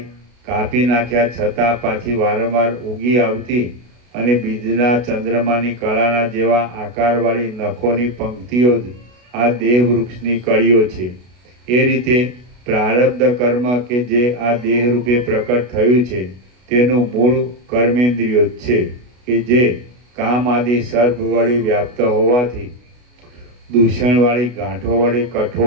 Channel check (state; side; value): late; left; 33 ms